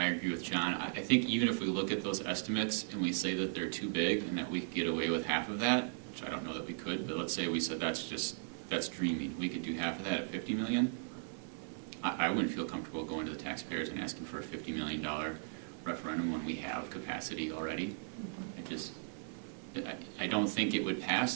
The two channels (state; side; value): silent; left; 53 dB below the other